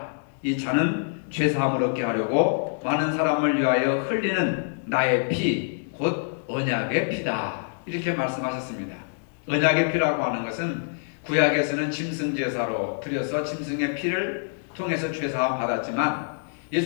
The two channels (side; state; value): right; silent; digital silence